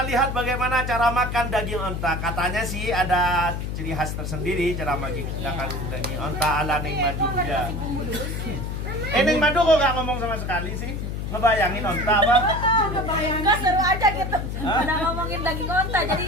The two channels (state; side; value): noise; left; hum, 4 dB below the sound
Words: lihat bagaimana cara makan daging onta. Katanya sih ada ciri khas tersendiri cara makan daging onta ala Neng Madu ya. Neng Madu kok gak ngomong sama sekali sih? Ngebayangin onta apa? Enggak seru aja gitu. Udah ngomongin daging onta, jadi